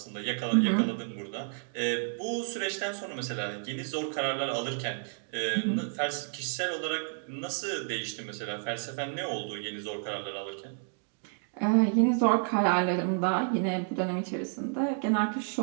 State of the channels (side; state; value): left; silent; 57 dB below the other